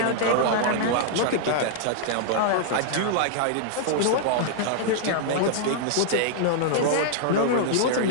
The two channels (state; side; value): different; both; correlation -0.01